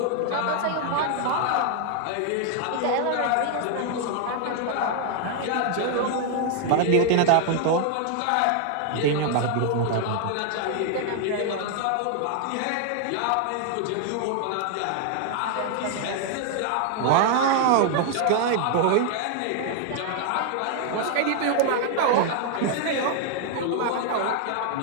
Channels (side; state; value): both; different; correlation 0.00